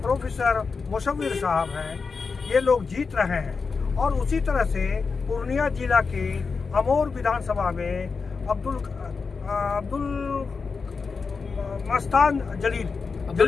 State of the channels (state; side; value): quieter; right; 4.9 dB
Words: प्रोफेसर मुशव्विर साहब हैं। ये लोग जीत रहे हैं। और उसी तरह से पूर्णिया जिला के अमोर विधानसभा में अब्दुल